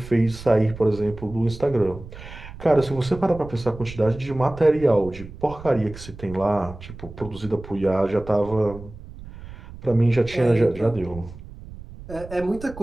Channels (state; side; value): noise; right; rumble, 15 dB below the sound